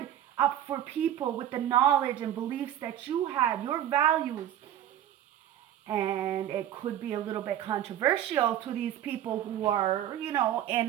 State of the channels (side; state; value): left; quieter; 11.3 dB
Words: up for people with the knowledge and beliefs that you had, your values. And it could be a little bit controversial to these people who are, in